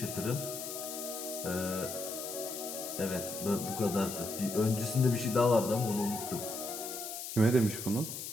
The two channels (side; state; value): left; noise; hiss, 7 dB below the sound